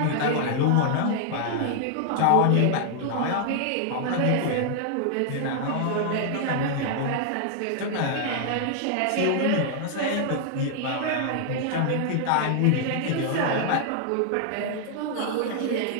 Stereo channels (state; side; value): different; both; correlation 0.00